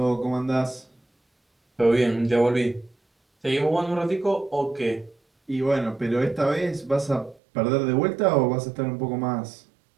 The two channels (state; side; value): drops out; left; at 7.4 s